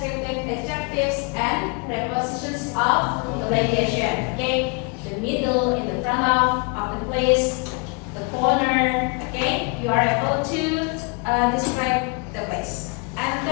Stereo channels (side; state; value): right; quieter; 33.6 dB